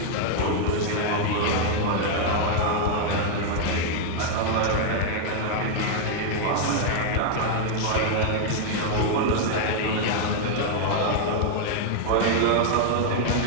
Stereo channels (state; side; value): different; both; correlation 0.00